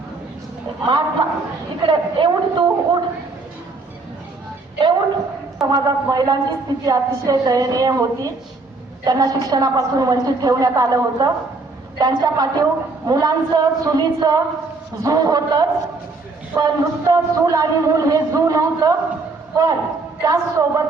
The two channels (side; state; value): left; quieter; 3.7 dB